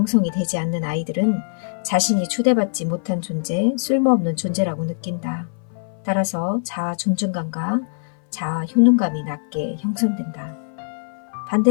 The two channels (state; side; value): silent; right; 61 dB below the other